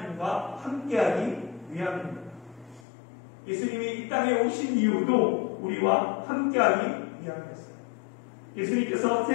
함께하기 위함입니다. 예수님이 이 땅에 오신 이유도 우리와 함께하기 위함이었어요. 예수님께서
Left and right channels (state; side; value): drops out; right; at 2.8 s